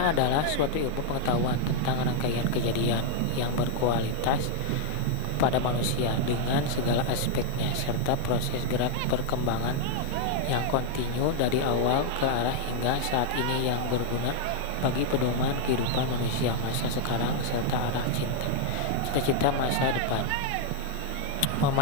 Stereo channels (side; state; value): both; different; correlation 0.00